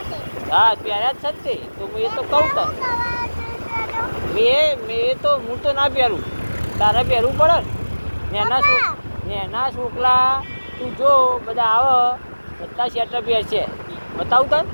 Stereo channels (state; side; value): inverted; both; correlation -1.00